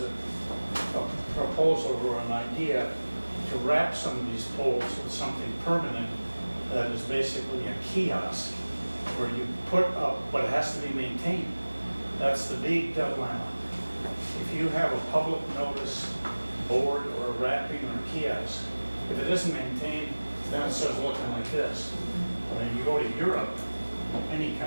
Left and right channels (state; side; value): inverted; both; correlation -1.00